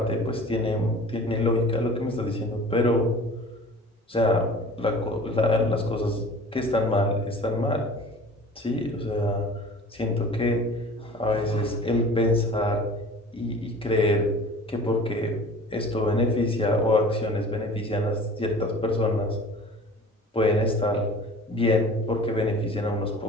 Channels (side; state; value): both; normal; correlation 0.43